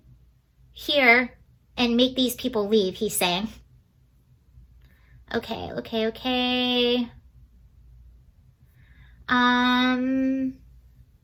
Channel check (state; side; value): identical; both; correlation 1.00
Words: here and make these people leave, he's saying. Okay.